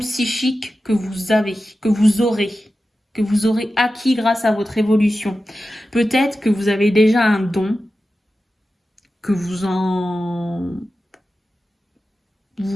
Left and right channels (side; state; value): both; normal; correlation 0.93